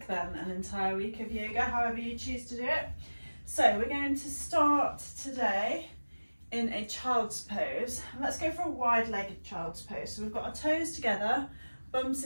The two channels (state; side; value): inverted; both; correlation -1.00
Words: then an entire week of yoga, however you choose to do it. So we're going to start today in a child's pose. Let's go for a wide-legged child's pose. So we've got our toes together, bum